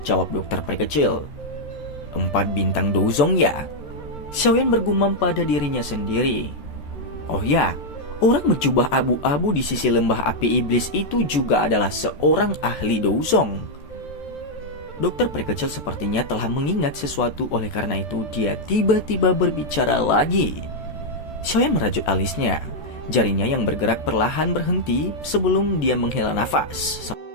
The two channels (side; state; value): right; late; 14 ms